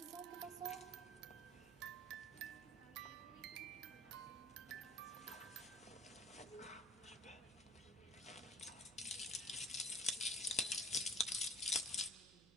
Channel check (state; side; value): noise; right; hum, 22 dB below the sound